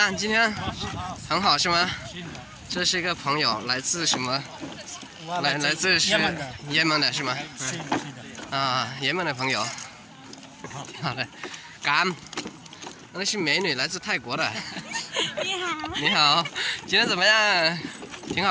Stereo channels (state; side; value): identical; both; correlation 1.00